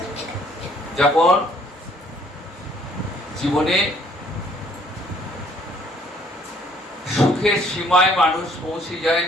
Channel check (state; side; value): normal; both; correlation 0.62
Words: যখন জীবনে সুখের সীমায় মানুষ পৌঁছে যায়